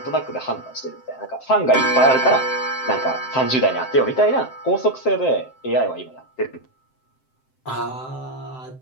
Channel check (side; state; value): right; late; 7.7 ms